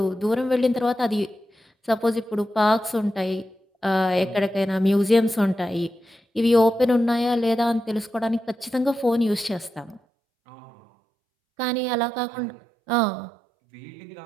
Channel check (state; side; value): drops out; left; at 10.0 s